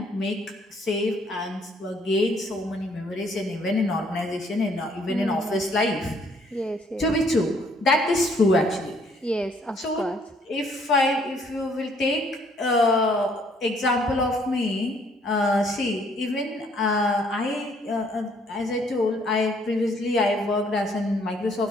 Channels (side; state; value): both; normal; correlation 0.64